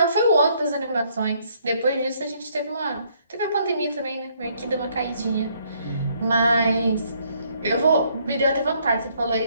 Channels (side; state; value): both; inverted; correlation -0.67